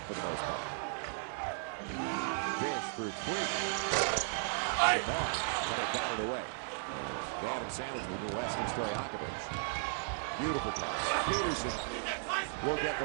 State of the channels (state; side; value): silent; left; 54 dB below the other